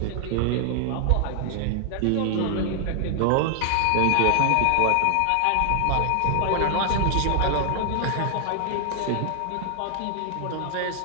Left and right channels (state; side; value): different; both; correlation 0.00